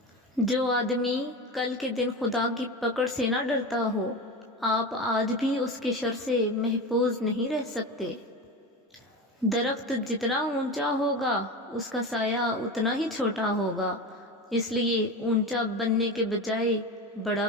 جو آدمی کل کے دن خدا کی پکڑ سے نہ ڈرتا ہو، آپ آج بھی اس کے شر سے محفوظ نہیں رہ سکتے۔ درخت جتنا اونچا ہوگا، اس کا سایہ اتنا ہی چھوٹا ہوگا، اس لیے اونچا بننے کے بجائے بڑا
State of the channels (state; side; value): normal; both; correlation 0.25